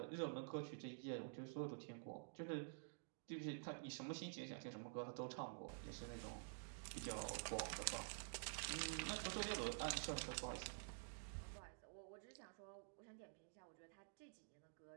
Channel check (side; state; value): left; silent; digital silence